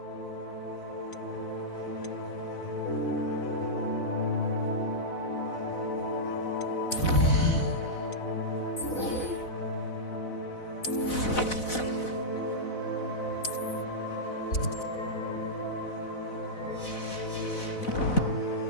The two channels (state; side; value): late; right; 4.0 ms